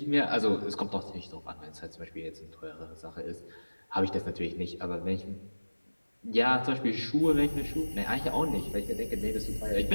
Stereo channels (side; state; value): both; inverted; correlation -1.00